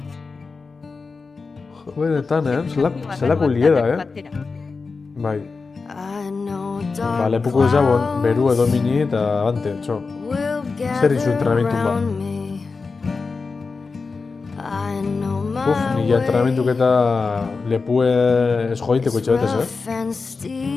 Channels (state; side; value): quieter; right; 4.4 dB